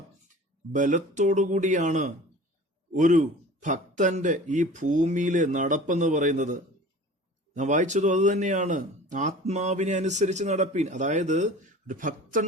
ബലത്തോടുകൂടിയാണ് ഒരു ഭക്തന്റെ ഈ ഭൂമിയിലെ നടപ്പെന്ന് പറയുന്നത്. ഞാൻ വായിച്ചതും അത് തന്നെയാണ്. ആത്മാവിനെ അനുസരിച്ച് നടപ്പീൻ. അതായത് ഒരു ഭക്തൻ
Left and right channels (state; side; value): normal; both; correlation 0.41